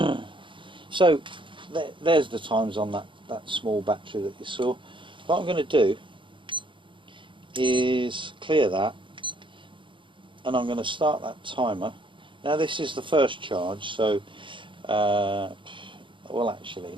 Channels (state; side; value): late; left; 0.24 ms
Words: So there's the times on that small battery that you saw. What I'm going to do is clear that, and I'm going to start that timer. Now this is the first charge, so well, actually